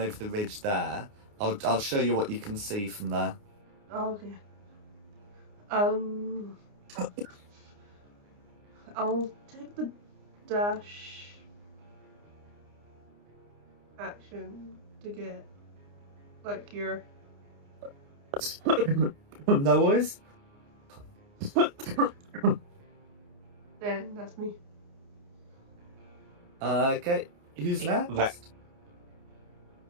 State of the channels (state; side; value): late; left; 29 ms